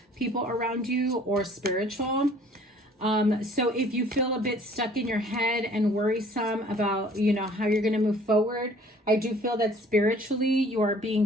people around you or spiritual. So if you feel a bit stuck in your head and worrisome about, you know, how you're going to move forward, I do feel that spiritually you are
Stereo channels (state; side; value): normal; both; correlation 0.54